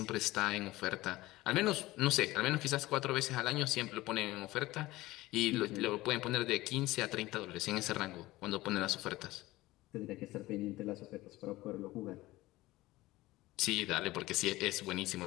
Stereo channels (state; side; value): quieter; right; 18.3 dB